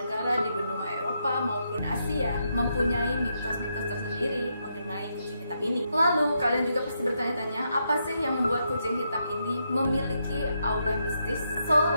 di benua Eropa maupun Asia mempunyai mitos-mitos tersendiri mengenai kucing hitam ini. Lalu kalian juga pasti bertanya-tanya, apa sih yang membuat kucing hitam ini memiliki aura mistis? So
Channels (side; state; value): both; inverted; correlation -0.80